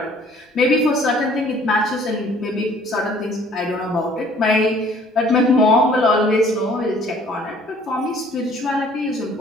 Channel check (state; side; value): normal; both; correlation 0.56